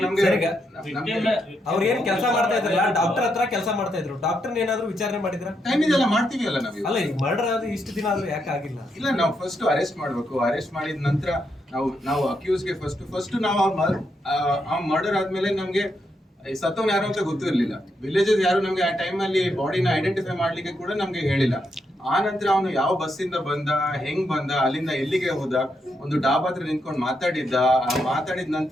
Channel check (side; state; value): both; normal; correlation 0.81